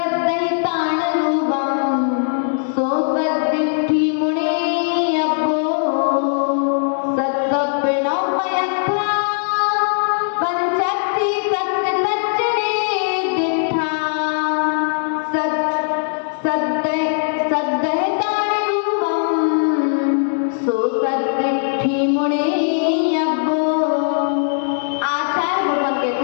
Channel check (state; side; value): silent; right; digital silence